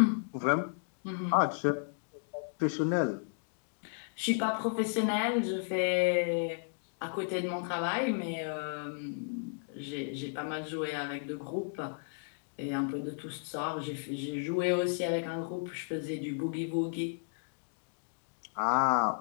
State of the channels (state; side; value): silent; right; digital silence